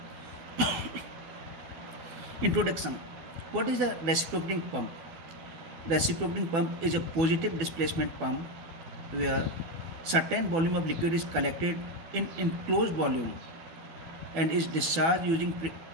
Introduction. What is a reciprocating pump? Reciprocating pump is a positive displacement pump where certain volume of liquid is collected in enclosed volume and is discharged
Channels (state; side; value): late; left; 12 ms